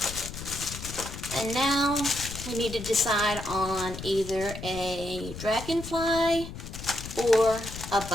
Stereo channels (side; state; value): left; noise; rumble, 10 dB below the sound